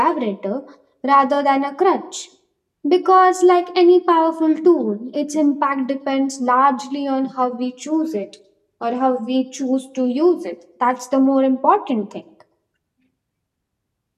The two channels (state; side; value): identical; both; correlation 1.00